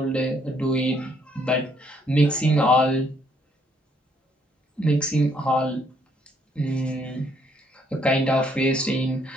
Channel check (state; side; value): normal; both; correlation 0.68